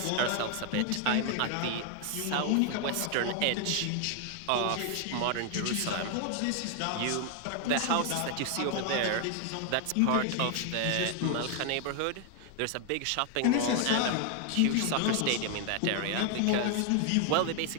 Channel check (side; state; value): both; different; correlation 0.00